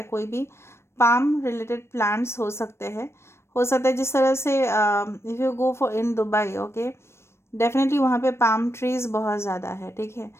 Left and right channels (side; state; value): right; late; 0.13 ms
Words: कोई भी पाम रिलेटेड प्लांट्स हो सकते हैं। हो सकता है जिस तरह से if you go for in Dubai, okay, definitely वहाँ पे पाम ट्रीज़ बहुत ज़्यादा है। ठीक है,